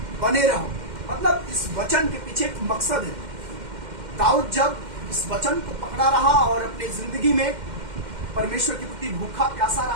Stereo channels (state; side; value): late; left; 2.1 ms